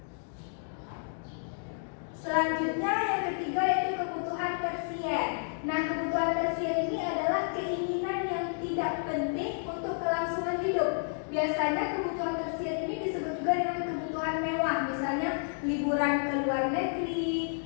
Selanjutnya yang ketiga yaitu kebutuhan tersier. Nah, kebutuhan tersier ini adalah keinginan yang tidak penting untuk kelangsungan hidup. Biasanya kebutuhan tersier ini disebut juga dengan kebutuhan mewah. Misalnya liburan ke luar negeri,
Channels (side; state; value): right; silent; digital silence